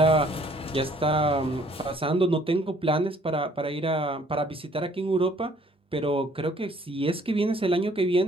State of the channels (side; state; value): both; normal; correlation 0.61